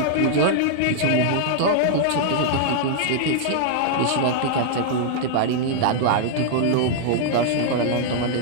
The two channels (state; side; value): different; both; correlation -0.01